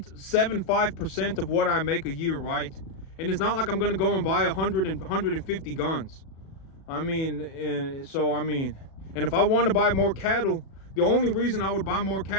of what I make a year, right? And it's not like I'm gonna go and buy 150 guns. And if I want to buy more cattle, the only reason I would buy more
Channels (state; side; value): late; right; 37 ms